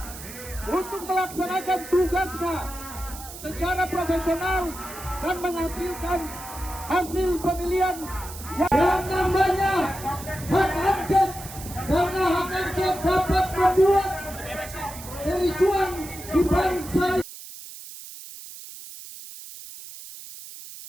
untuk melaksanakan tugasnya secara profesional dan menghasilkan hasil pemilihan Yang namanya hak angket, karena hak angket dapat membuat kericuan di bangsa.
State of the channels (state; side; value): noise; right; hiss, 13 dB below the sound